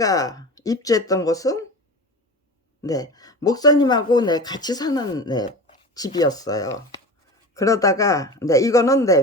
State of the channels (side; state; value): both; normal; correlation 0.31